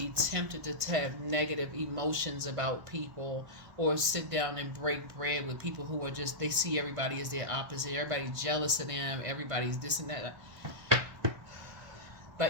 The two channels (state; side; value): late; left; 1.2 ms